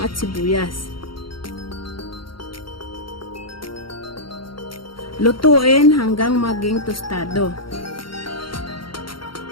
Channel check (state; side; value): late; right; 0.73 ms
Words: at sibuyas. Lutuin hanggang maging tostado.